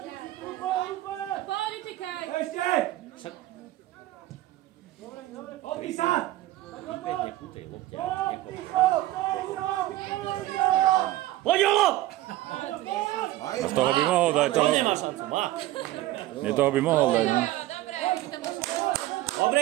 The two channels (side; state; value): left; quieter; 15.8 dB